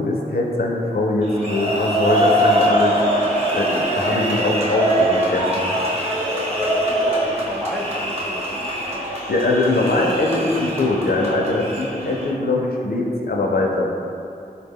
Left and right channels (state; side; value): normal; both; correlation 0.49